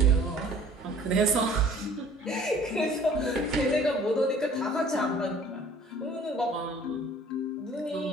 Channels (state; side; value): normal; both; correlation 0.52